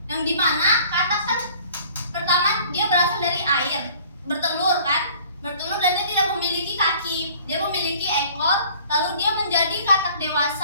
Yang dimana katak kan pertama dia berasal dari air, bertelur kan? Bertelur dan dia tidak memiliki kaki. Dia memiliki ekor, lalu dia menjadi katak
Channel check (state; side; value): inverted; both; correlation -0.52